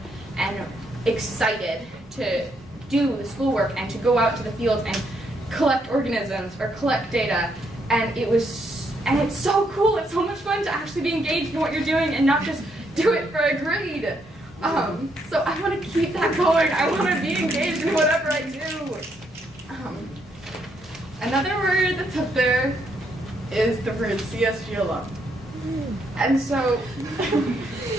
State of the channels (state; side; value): normal; both; correlation 0.75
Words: and excited to do the schoolwork and to go out to the fields and collect organisms or collect data. And it's so cool. It's so much fun to actually be engaged in what you're doing and not just do it for a grade. So I want to keep that going. I want to be engaged in whatever I do. Another word that's up there is the word CSG alum. And so